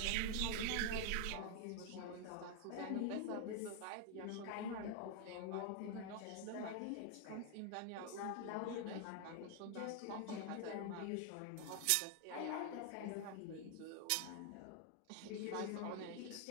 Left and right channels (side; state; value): both; different; correlation 0.00